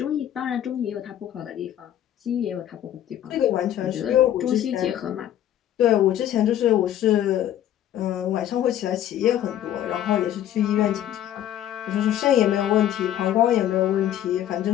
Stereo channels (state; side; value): quieter; right; 11.5 dB